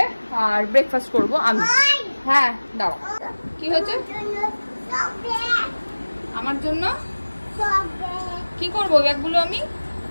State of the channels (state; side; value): inverted; both; correlation -1.00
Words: আর ব্রেকফাস্ট করবো আমি। হ্যাঁ দাঁড়াও, কি হয়েছে? আমার জন্য কি করবো ব্যাগগুলো আমি?